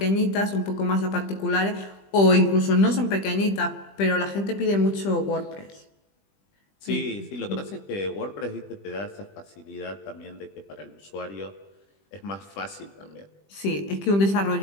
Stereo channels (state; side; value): late; right; 20 ms